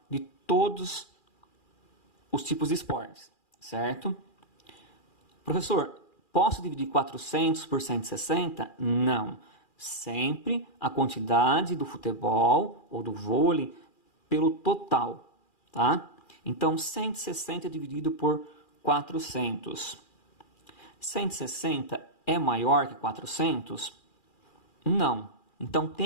de todos os tipos de esportes, certo? Professor, posso dividir 400 por 160? Não. Sempre a quantidade do futebol ou do vôlei pelo total, tá? Então, 160 dividido por 400. 160 é maior que 400? Não. Então,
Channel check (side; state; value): right; late; 2.4 ms